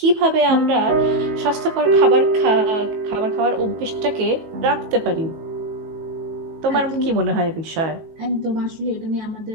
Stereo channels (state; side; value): late; left; 18 ms